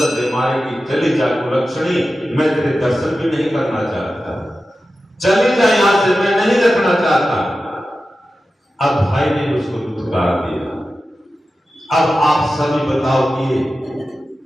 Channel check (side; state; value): both; normal; correlation 0.93